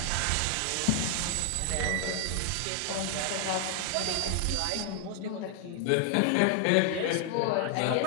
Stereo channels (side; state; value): both; different; correlation 0.00